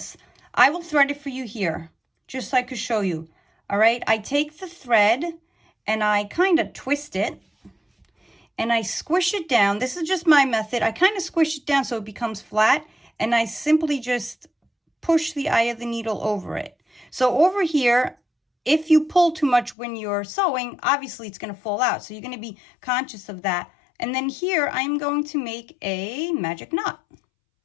I will thread it for you here, just so I could show you, all right? I take the thread, and I kind of twist it, and I squish it down. This is just my method. I kind of squish it down so it becomes flat, and I simply just push the eye of the needle over it. So over here, if you pull too much when you're sewing, obviously it's going to fall out. So you're going to be conscious of that. And then here, I'm going to make a magic knot.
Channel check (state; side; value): drops out; right; at 19.8 s